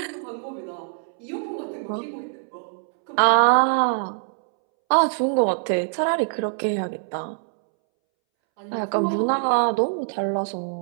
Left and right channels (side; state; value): left; silent; 63 dB below the other